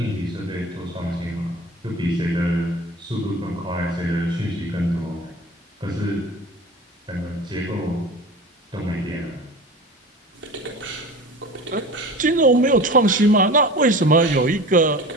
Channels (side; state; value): both; normal; correlation 0.36